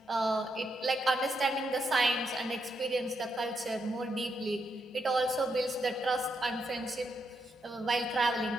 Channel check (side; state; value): both; normal; correlation 0.80